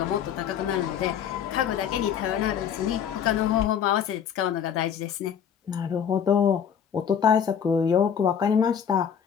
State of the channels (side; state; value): right; quieter; 8.2 dB